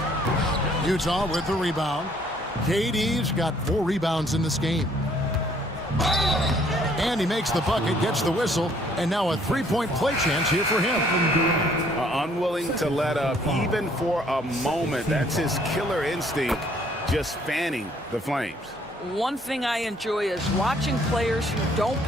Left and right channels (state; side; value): normal; both; correlation 0.62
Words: Utah with the rebound. KD's got 4 rebounds in this game. And he makes the bucket, gets the whistle, and now a three-point play chance here for him. Unwilling to let up even for a moment. That's his killer instinct, just fanning the Flames. One thing I enjoy is watching players who don't